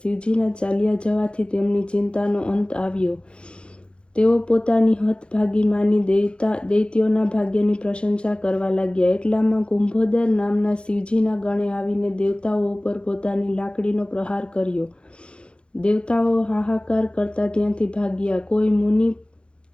ચાલ્યા જવાથી તેમની ચિંતાનો અંત આવ્યો. તેઓ પોતાની હતભાગી માની દૈત્યોના ભાગ્યની પ્રશંસા કરવા લાગ્યા. એટલામાં કુંભોદર નામના શિવજીના ગણે આવીને દેવતાઓ ઉપર પોતાની લાકડીનો પ્રહાર કર્યો. દેવતાઓ હાહાકાર કરતા ત્યાંથી ભાગ્યા. કોઈ મુનિ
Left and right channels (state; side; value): late; right; 0.057 ms